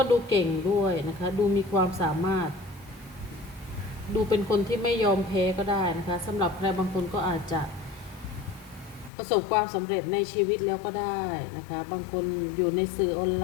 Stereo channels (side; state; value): right; drops out; at 9.1 s